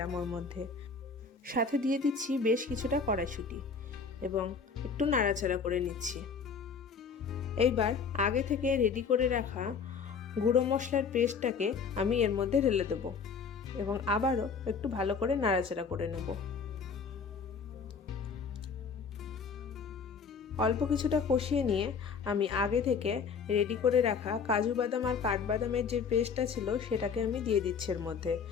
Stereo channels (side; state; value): right; quieter; 5.6 dB